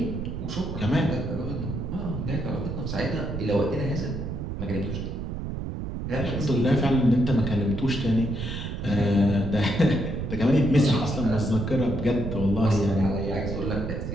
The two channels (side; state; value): right; noise; rumble, 5 dB below the sound